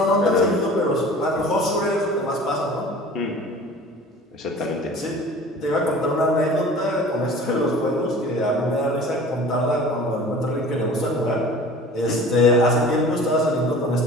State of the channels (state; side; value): normal; both; correlation 0.43